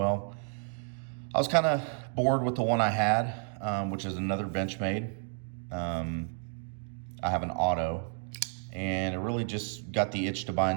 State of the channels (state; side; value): silent; left; 57 dB below the other